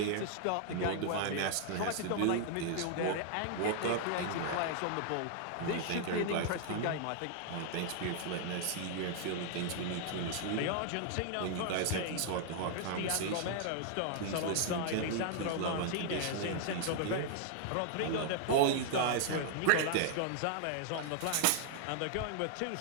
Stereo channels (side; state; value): both; different; correlation 0.00